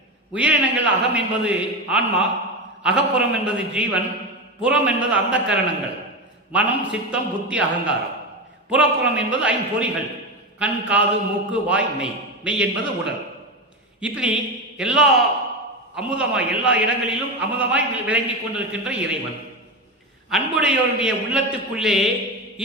உயிரினங்கள் அகம் என்பது ஆன்மா, அகப்புறம் என்பது ஜீவன், புறம் என்பது அந்த கரணங்கள், மனம் சித்தம் புத்தி அகங்காரம். புறப்புறம் என்பது ஐம்பொறிகள், கண் காது மூக்கு வாய் மெய். மெய் என்பது உடல். இப்படி எல்லா எல்லா இடங்களிலும் அமுதமாய் விளங்கி கொண்டிருக்கின்ற இறைவன், அன்புடையோருடைய உள்ளத்துக்குள்ளே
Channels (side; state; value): both; normal; correlation 0.18